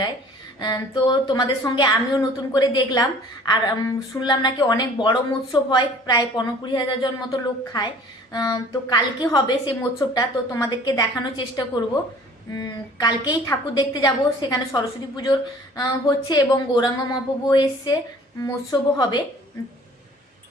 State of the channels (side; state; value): both; normal; correlation 0.50